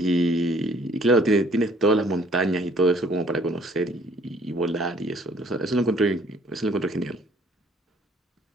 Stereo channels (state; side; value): normal; both; correlation 0.59